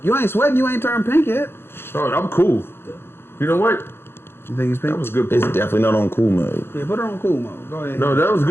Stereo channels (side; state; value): right; late; 0.11 ms